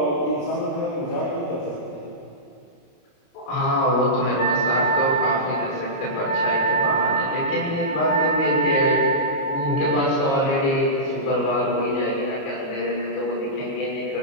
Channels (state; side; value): late; right; 28 ms